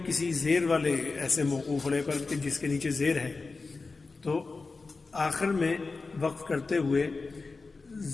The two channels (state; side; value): quieter; right; 4.0 dB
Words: کسی زیر والے ایسے موقوف علیہ پر کہ جس کے نیچے زیر ہے، تو آخر میں وقف کرتے ہوئے